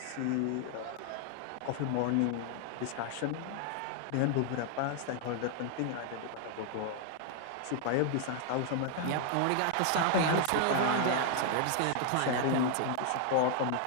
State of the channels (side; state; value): both; different; correlation 0.00